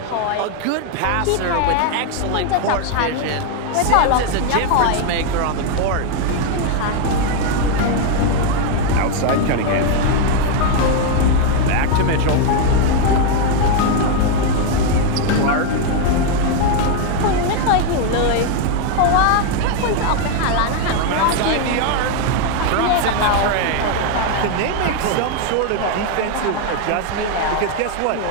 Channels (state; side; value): different; both; correlation 0.01